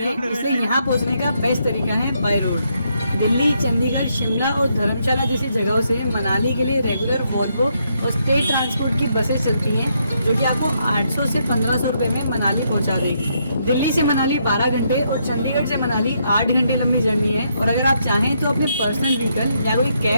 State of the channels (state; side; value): inverted; both; correlation -0.76